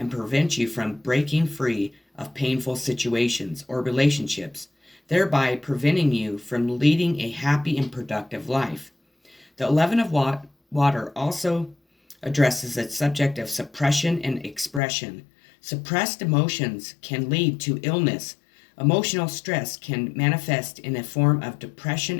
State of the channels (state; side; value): drops out; right; at 14.8 s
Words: prevents you from breaking free of painful situations or relationships, thereby preventing you from leading a happy and productive life. The 11 of water also addresses the subject of suppression and expression. Suppressed emotions can lead to illness. Emotional stress can manifest in a form of depression,